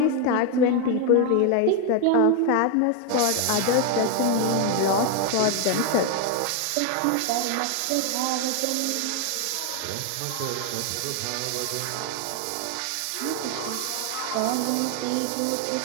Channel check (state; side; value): different; both; correlation 0.01